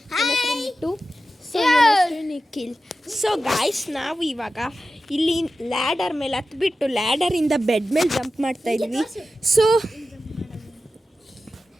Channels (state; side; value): normal; both; correlation 0.93